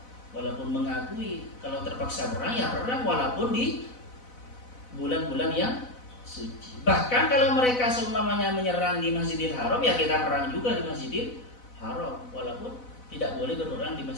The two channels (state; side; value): late; right; 4.0 ms